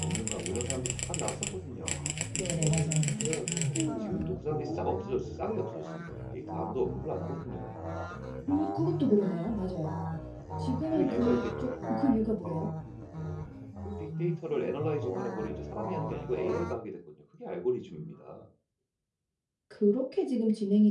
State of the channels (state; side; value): identical; both; correlation 1.00